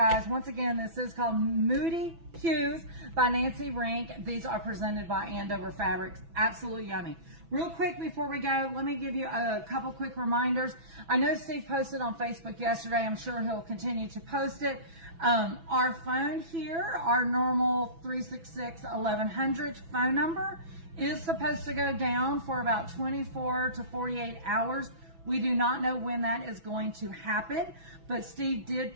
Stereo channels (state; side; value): late; left; 6.0 ms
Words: Once again, this is called Moody Hues by Nancy Rink. These are presented by Andover Fabrics. Absolutely yummy. Real quick before we go, let me give you a couple quick reminders. I know Steve posted on Facebook yesterday. I'm sure he'll continue to post it. Our phone here, our normal 366-1100 phone number, is supposed to go down for about 24 to 48 hours. We do not know when that is going to happen, but Steve